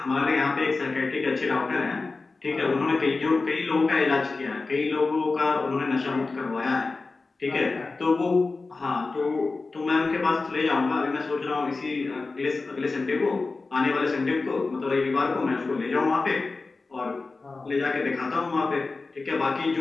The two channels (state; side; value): quieter; right; 3.8 dB